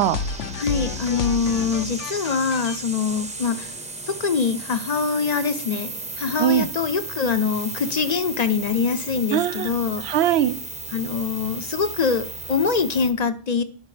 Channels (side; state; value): both; normal; correlation -0.12